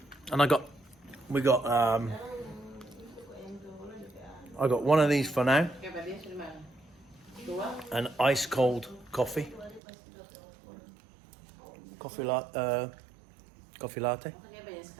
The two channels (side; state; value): left; drops out; at 9.8 s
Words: I got one of these for now. An ice cold coffee. Coffee latte.